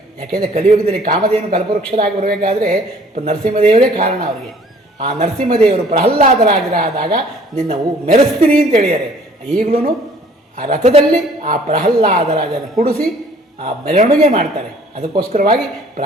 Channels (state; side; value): normal; both; correlation 0.55